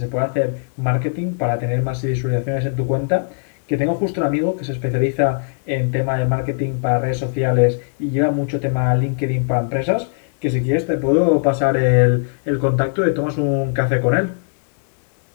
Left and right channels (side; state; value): right; silent; digital silence